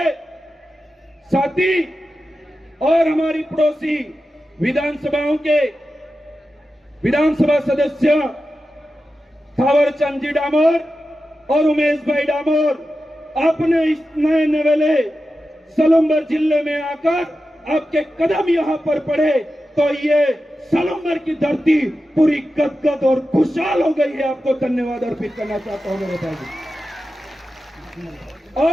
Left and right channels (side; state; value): both; normal; correlation 0.92